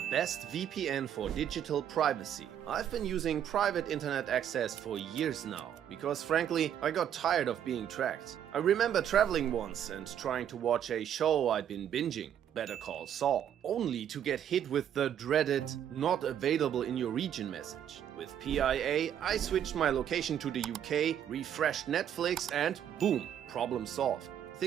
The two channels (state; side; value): quieter; left; 9.7 dB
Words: best VPN for digital privacy. I've been using private internet access for years now, because frankly, I got tired of being tracked. I remember traveling once and trying to watch a show I'd been binging, Better Call Saul, only to get hit with the dreaded "not available in your region" message. With PIA, I switched my location to the UK, refreshed Netflix and boom, problem solved.